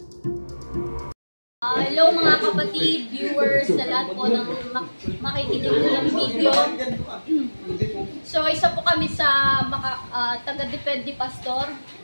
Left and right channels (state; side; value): inverted; both; correlation -1.00